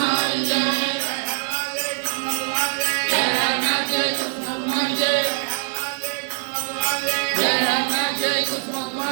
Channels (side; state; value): left; silent; digital silence